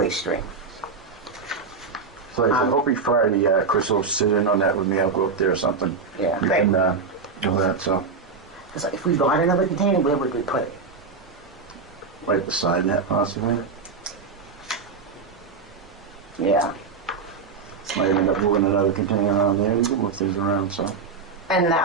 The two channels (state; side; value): quieter; left; 4.8 dB